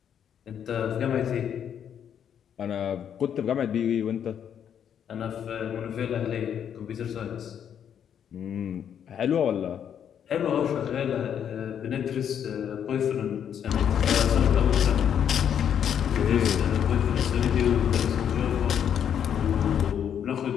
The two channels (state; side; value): quieter; right; 8.8 dB